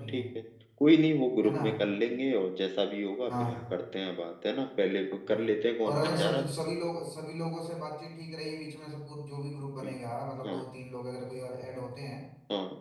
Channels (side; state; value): both; identical; correlation 1.00